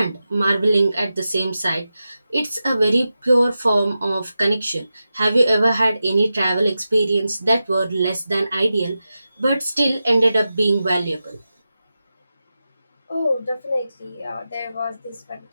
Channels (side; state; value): both; inverted; correlation -0.92